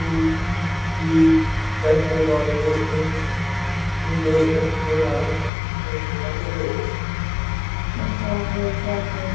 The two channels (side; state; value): right; drops out; at 5.5 s